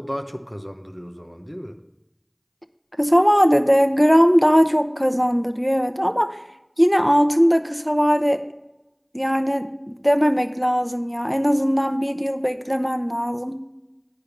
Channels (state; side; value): identical; both; correlation 1.00